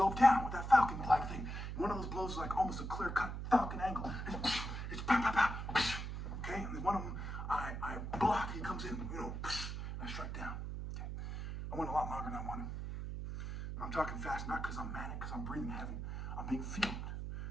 down with that falcon-like thing. One of those blows is like almost a clear-cut falcon angle. It's pow, pow, pow. Okay? And then one of them, I block. He comes in, and I strike down. Okay? I went a lot longer than I wanted. I'm talking fast, not because I'm manic, because I'm breathing heavy. I'm being filmed.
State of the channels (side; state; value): right; noise; hum, 5 dB below the sound